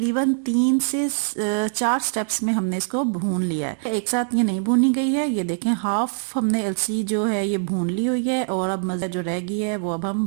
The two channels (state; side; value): silent; left; 63 dB below the other